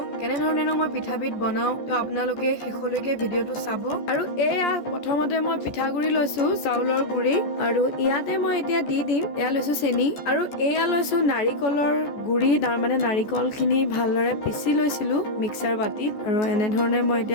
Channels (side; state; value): right; late; 14 ms